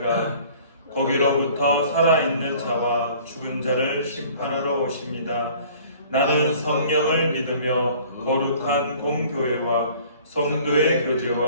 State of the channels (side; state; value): both; inverted; correlation -0.51